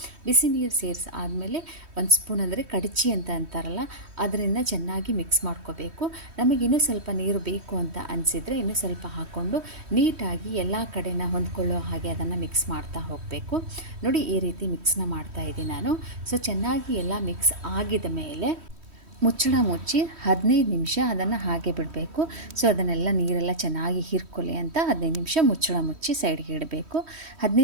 ಬಿಸಿ ನೀರು ಸೇರಿಸಾದ್ಮೇಲೆ 1 ಸ್ಪೂನ್ ಅಂದರೆ ಕಡಚಿ ಅಂತ ಅಂತಾರಲ್ಲ, ಅದರಿಂದ ಚೆನ್ನಾಗಿ ಮಿಕ್ಸ್ ಮಾಡ್ಕೋಬೇಕು. ನಮಗಿನ್ನೂ ಸ್ವಲ್ಪ ನೀರು ಬೇಕು ಅಂತ ಅನಿಸಿದರೆ ಇನ್ನೂ ಸ್ವಲ್ಪ ಹಾಕ್ಕೊಂಡು ನೀಟಾಗಿ ಎಲ್ಲ ಕಡೆನ ಹೊಂದ್ಕೊಳ್ಳೋ ಹಾಗೆ ಅದನ್ನು ಮಿಕ್ಸ್ ಮಾಡ್ತಾ ಹೋಗಬೇಕು. ನೋಡಿ, ಈ ರೀತಿ ಮಿಕ್ಸ್ನ ಮಾಡ್ತಾ ಇದ್ದೀನಿ ನಾನು. ಸೊ ಚೆನ್ನಾಗಿ ಎಲ್ಲ ಮಿಕ್ಸ್ ಆಗಿದ ಮೇಲೆ ಮುಚ್ಚಳ ಮುಚ್ಚಿ 15 ನಿಮಿಷ ಅದನ್ನು ಹಾಗೆ ಬಿಡಬೇಕು. ಸೊ ಅದನ್ನೆಲ್ಲ ನೀರೆಲ್ಲ ಚೆನ್ನಾಗಿ ಹೀರ್ಕೊಳ್ಳಿ ಅಂತ 15 ನಿಮಿಷ ಮುಚ್ಚಳ ಮುಚ್ಚಿ ಸೈಡ್ಗೆ ಇಡಬೇಕು.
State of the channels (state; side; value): late; left; 3.1 ms